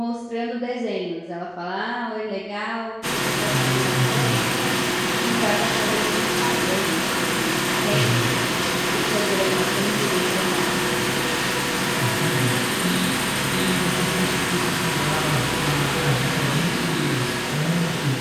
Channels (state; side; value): identical; both; correlation 1.00